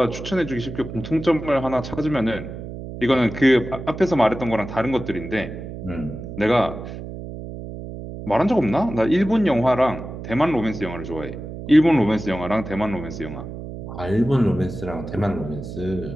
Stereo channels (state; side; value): noise; right; hum, 10 dB below the sound